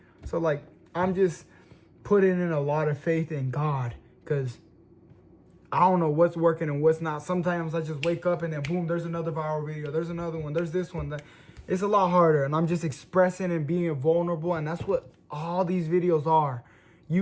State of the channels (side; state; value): both; identical; correlation 1.00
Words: So, like, I'm just putting in a lot of faith in God, because I don't know what's working and what's not. Sometimes I just wake up and then boom, there's another viral video. There's another one. There's this one. It's a lot harder. And I'm just expressing and being vulnerable. And that's what all these videos are.